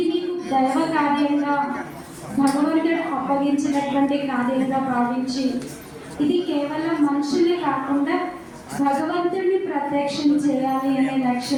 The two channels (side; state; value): both; identical; correlation 1.00